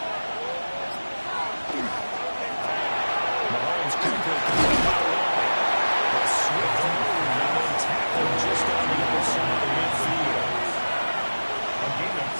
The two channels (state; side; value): inverted; both; correlation -1.00